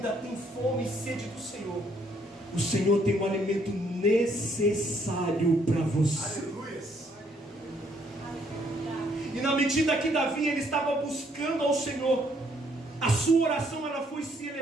tem fome e sede do Senhor, o Senhor tem um alimento necessário para você. Aleluia. E na medida que Davi ele estava buscando ao Senhor, a sua oração ela foi se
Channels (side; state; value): both; normal; correlation 0.68